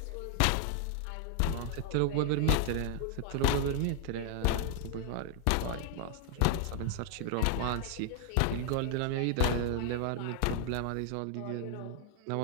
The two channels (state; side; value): different; both; correlation 0.00